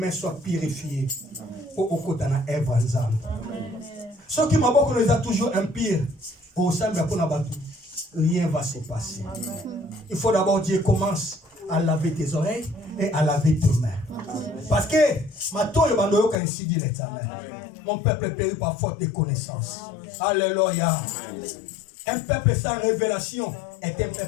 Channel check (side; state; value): right; drops out; at 16.4 s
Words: soient purifiées. Pour okotana evanzam. Ce qui m'a beaucoup nous a toujours impur. Au sein de la rien va se passer. Il faut d'abord Dieu commence à laver tes oreilles et à laver tes mains. Parce que mon peuple est péri par faute de connaissance. Alléluia. Un peuple sans révélation est un